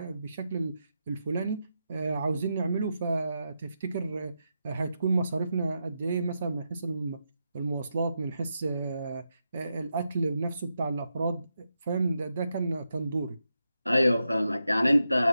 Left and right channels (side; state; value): both; inverted; correlation -0.86